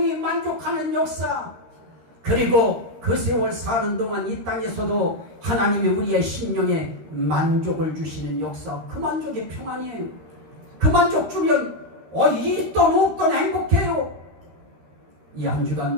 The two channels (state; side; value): late; left; 13 ms